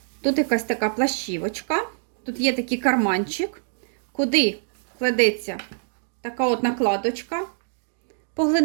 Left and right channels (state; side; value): silent; left; digital silence